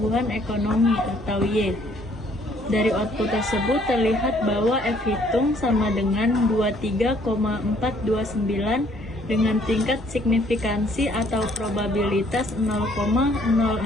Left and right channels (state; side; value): normal; both; correlation 0.62